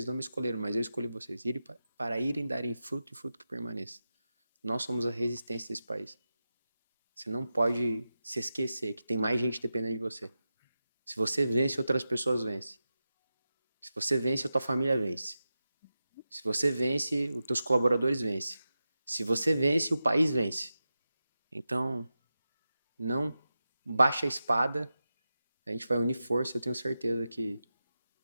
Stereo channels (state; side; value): inverted; both; correlation -0.92